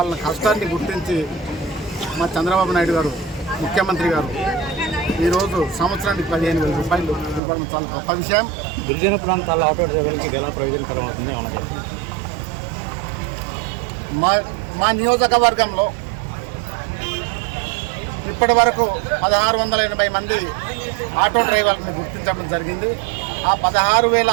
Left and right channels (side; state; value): left; drops out; at 7.4 s